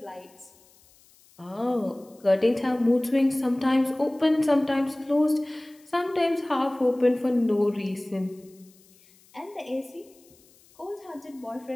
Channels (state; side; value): noise; left; hiss, 29 dB below the sound